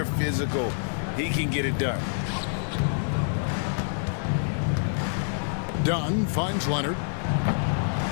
physical, he can get it done. Dunn finds Leonard.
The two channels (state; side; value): silent; right; digital silence